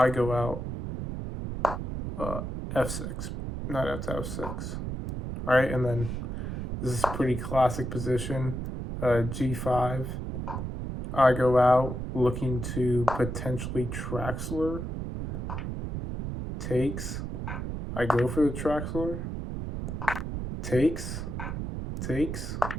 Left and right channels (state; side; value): noise; right; rumble, 5 dB below the sound